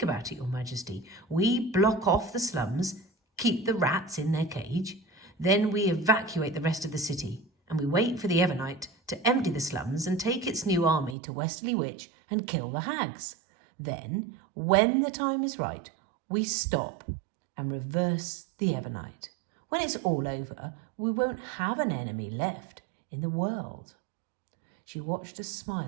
about it, Your Majesty. We block off the slums, keep the rats in their cage, then we evacuate the rest of the city, and we wait for the EVERNIGHT to empty the slums and take its new army to Westerly Witch and kill the hags. Then, when the time is right, we stop and reverse the EVERNIGHT. When it's all over, we won't have an enemy left in the world." She watched a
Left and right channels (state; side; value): drops out; left; at 11.2 s